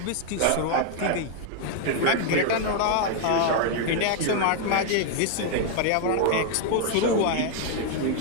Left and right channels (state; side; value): different; both; correlation 0.00